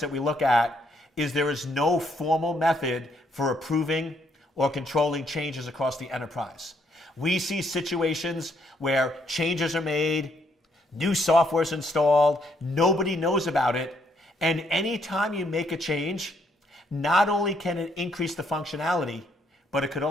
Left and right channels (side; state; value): both; normal; correlation 0.71